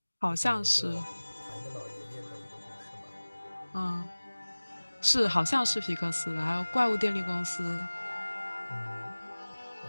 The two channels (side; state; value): both; inverted; correlation -1.00